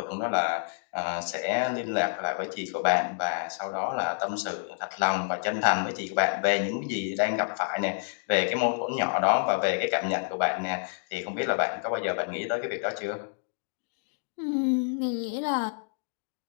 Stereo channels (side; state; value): right; silent; digital silence